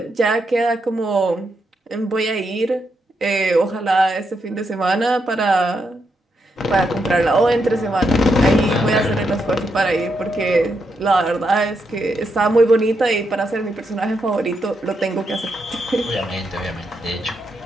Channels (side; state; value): both; normal; correlation 0.81